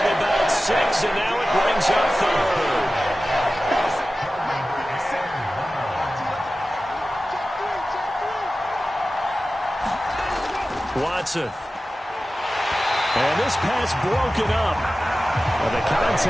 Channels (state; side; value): normal; both; correlation 0.95